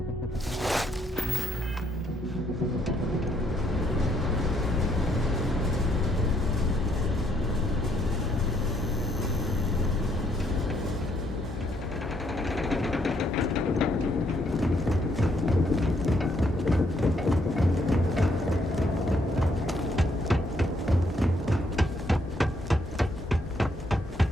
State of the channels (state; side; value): normal; both; correlation 0.71